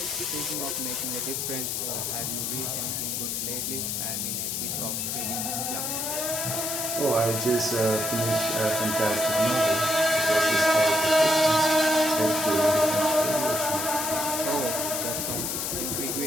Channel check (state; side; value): noise; left; hiss, 1 dB below the sound